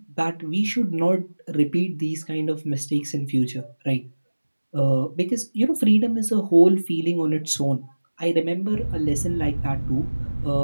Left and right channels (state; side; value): inverted; both; correlation -1.00